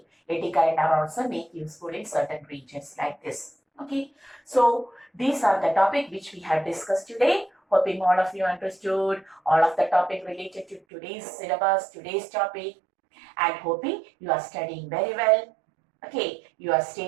eddy current are also made useful in certain regions like this. Okay, so these are the topic which we have discussed today. Hoping all of you understood all of the topic related to today's syllabus, today's topic, and hoping you are studying very well. Okay, you are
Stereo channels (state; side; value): drops out; left; at 10.8 s